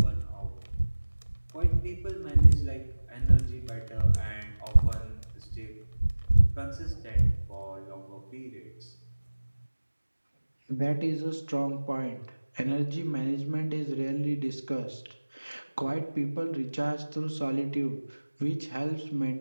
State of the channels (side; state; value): both; inverted; correlation -1.00